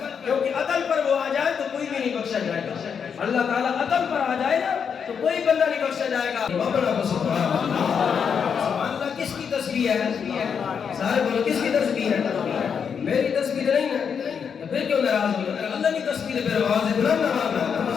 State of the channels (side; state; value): right; quieter; 6.9 dB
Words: کیونکہ عدل پر وہ آ جائے تو کوئی بھی نہیں بخشا جائے گا. اللہ تعالیٰ عدل پر آ جائے نا تو کوئی بندہ نہیں بخشا جائے گا. سبحان اللہ. کس کی تسبیح ہے؟ سارے بولو کس کی تسبیح ہے؟ میری تسبیح نہیں ہے. پھر کیوں ناراض ہو؟ اللہ کی تسبیح پھر آواز بلند